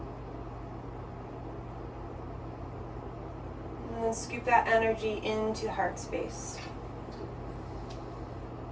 And then scoop that energy into the heart space.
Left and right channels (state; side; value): identical; both; correlation 1.00